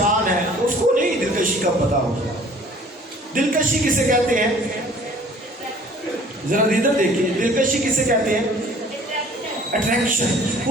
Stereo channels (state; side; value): normal; both; correlation 0.52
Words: ہے اس کو نہیں دلکشی کا پتا ہوگا دلکشی کسے کہتے ہیں ذرا ادھر دیکھیے دلکشی کسے کہتے ہیں اٹریکشن